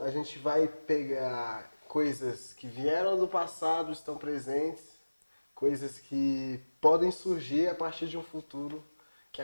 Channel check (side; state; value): both; inverted; correlation -1.00